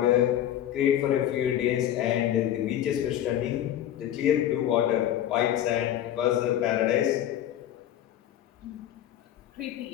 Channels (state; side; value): quieter; right; 11.5 dB